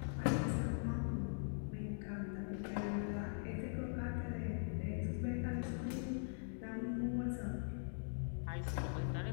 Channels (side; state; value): right; silent; digital silence